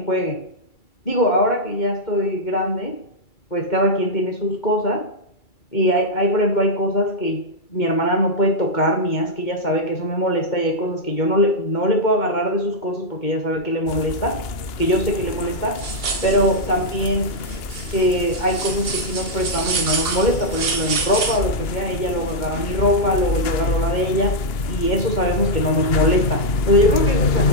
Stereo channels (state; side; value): late; right; 2.3 ms